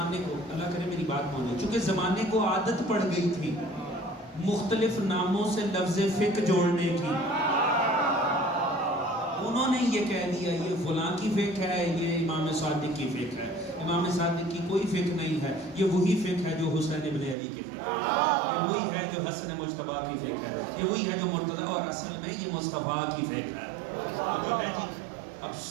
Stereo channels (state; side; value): drops out; left; at 17.4 s